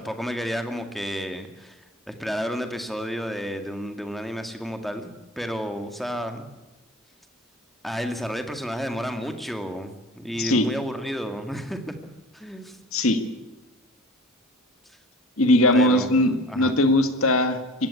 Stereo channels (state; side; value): normal; both; correlation 0.41